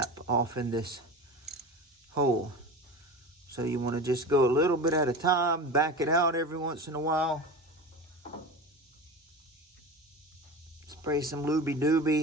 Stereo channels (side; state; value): both; normal; correlation 0.30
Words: off in this hole. So you want to just go a little bit at a time, back it out every once in a while. Spray some Looby